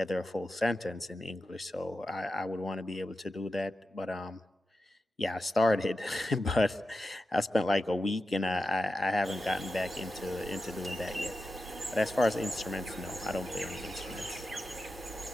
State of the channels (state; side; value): normal; both; correlation 0.91